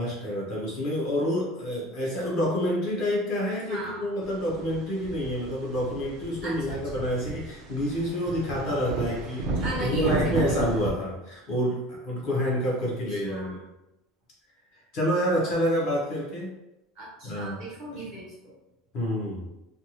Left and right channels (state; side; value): normal; both; correlation 0.43